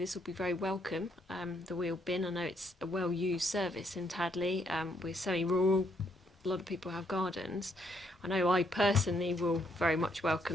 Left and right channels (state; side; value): normal; both; correlation 0.73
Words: will be very welcome. The wheel bin, I know it's a well-used service in Tadley. We're semi-rural, a lot of people have gardens. I know I personally will very much